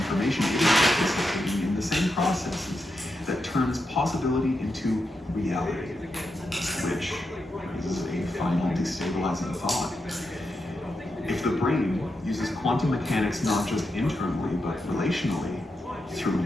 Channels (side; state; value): both; normal; correlation 0.86